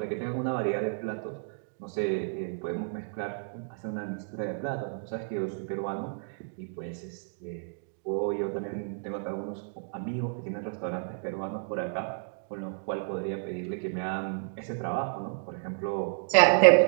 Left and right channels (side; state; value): left; silent; digital silence